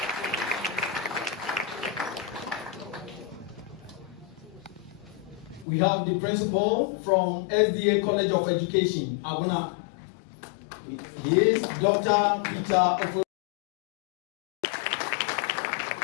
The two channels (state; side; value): drops out; right; at 5.7 s